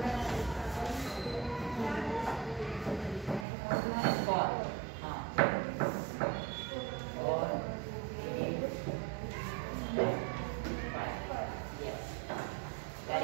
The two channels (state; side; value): drops out; left; at 3.5 s